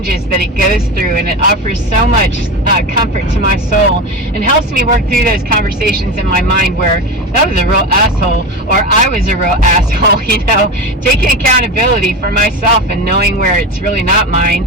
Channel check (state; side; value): normal; both; correlation 0.23